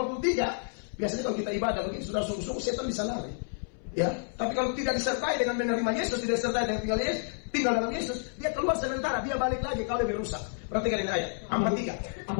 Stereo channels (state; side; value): silent; right; 58 dB below the other